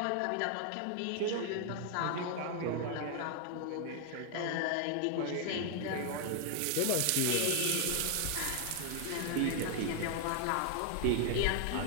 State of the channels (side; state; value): both; different; correlation 0.00